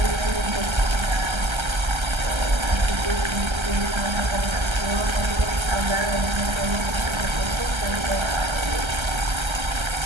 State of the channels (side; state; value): left; late; 1.3 ms